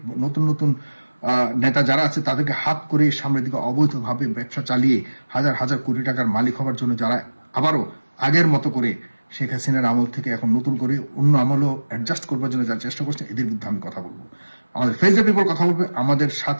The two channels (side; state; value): both; inverted; correlation -1.00